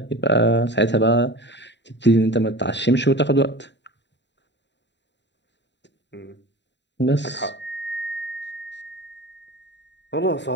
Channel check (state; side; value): late; right; 0.52 ms